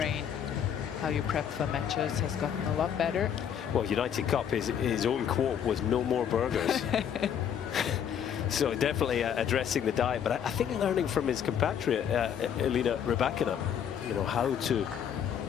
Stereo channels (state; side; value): quieter; right; 8.6 dB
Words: how you prep for matches has gotten a lot better. Well, United Cup, his own quote was "no more burgers." So definitely addressing the diet, but I think learning from his compatriot, Elina Rybakina, you know, how to